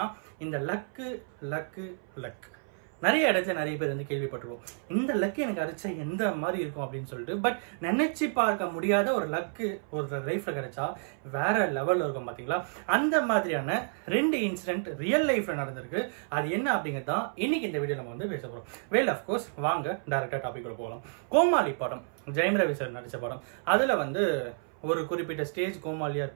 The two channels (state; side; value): silent; left; 58 dB below the other